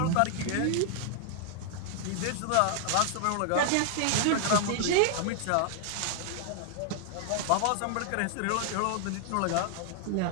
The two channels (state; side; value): different; both; correlation 0.00